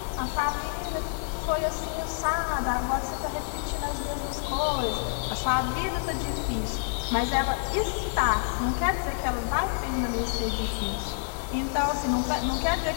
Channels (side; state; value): right; silent; 59 dB below the other